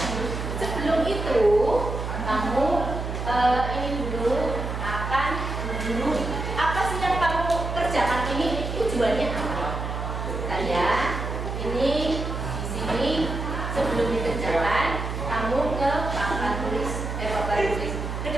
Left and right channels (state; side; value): noise; right; hum, 4 dB below the sound